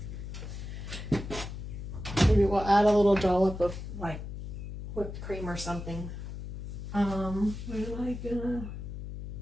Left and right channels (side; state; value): left; noise; hum, 8 dB below the sound